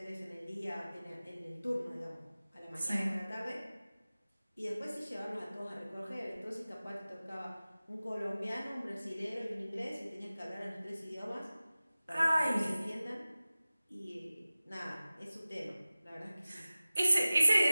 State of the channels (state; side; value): inverted; both; correlation -0.97